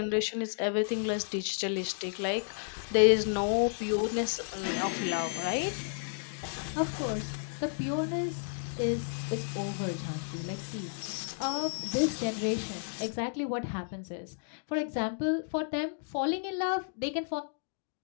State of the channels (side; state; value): right; silent; digital silence